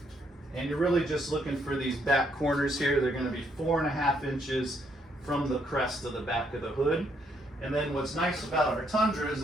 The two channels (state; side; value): normal; both; correlation 0.72